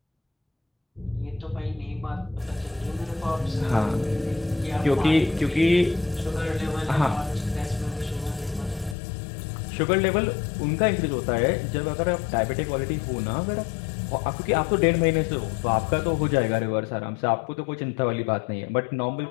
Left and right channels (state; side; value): drops out; right; at 9.0 s